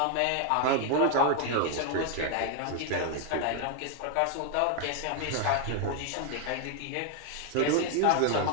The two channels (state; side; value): different; both; correlation 0.01